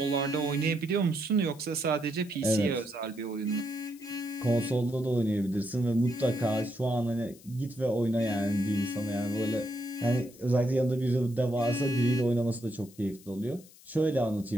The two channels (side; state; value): left; noise; hiss, 23 dB below the sound